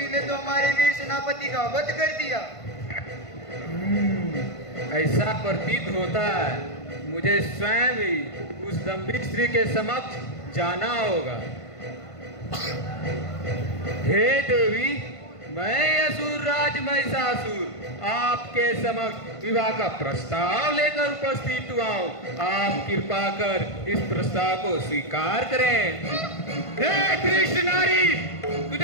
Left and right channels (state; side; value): late; right; 1.5 ms